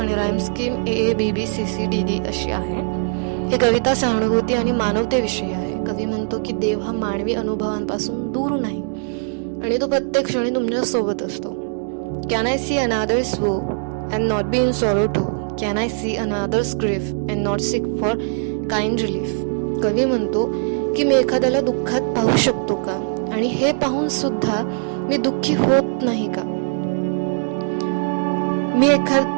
राईम स्कीम AABBCCDD अशी आहे. ही कविता सहानुभूती आणि मानवतेविषयी आहे. कवी म्हणतो की देव हा मानवी अनुभवांपासून दूर नाही आणि तो प्रत्येक क्षणी तुमच्या सोबत असतो. Can I see another's woe and not be in sorrow too? Can I see another's grief and not seek for kind relief? कवी म्हणतो की मी एखाद्याला दुःखात पाहू शकतो का आणि हे पाहून सुद्धा मी दुःखी होत नाही का? मी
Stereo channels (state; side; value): silent; left; 65 dB below the other